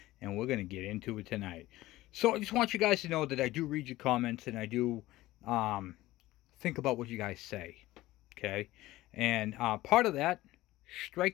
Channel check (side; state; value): right; quieter; 17.2 dB